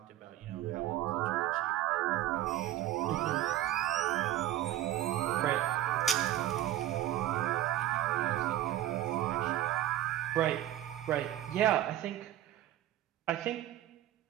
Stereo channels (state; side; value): quieter; left; 13.4 dB